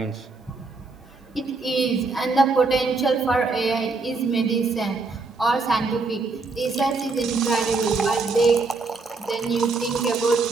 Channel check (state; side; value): quieter; left; 3.9 dB